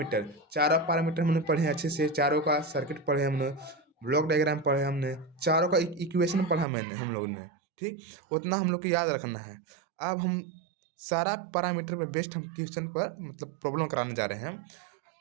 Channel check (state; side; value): drops out; left; at 6.7 s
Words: चारों पैरामीटर हमने पढ़े हैं अच्छे से, चारों का सर्किट पढ़े हमने, ब्लॉक डायग्राम पढ़े हमने, चारों का इक्वेशन पढ़ा मैंने हम लोगों ने, ठीक। उतना हम लोग को याद रखना है। अब हम सारा पैरामीटर पे बेस्ड हम क्वेश्चन पर मतलब प्रॉब्लम कराने जा रहे हैं,